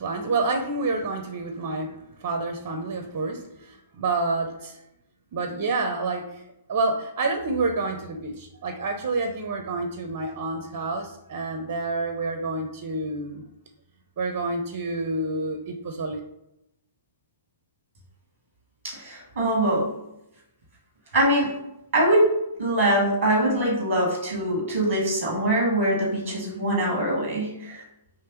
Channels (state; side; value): inverted; both; correlation -0.44